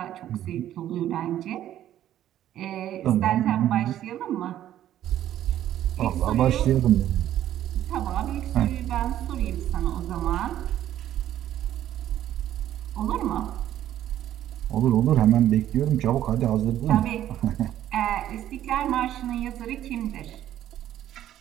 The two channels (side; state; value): left; quieter; 12.0 dB